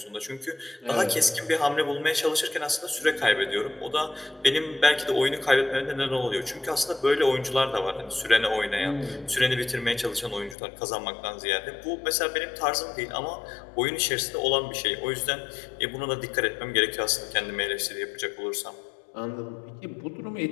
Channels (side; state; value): right; drops out; at 10.6 s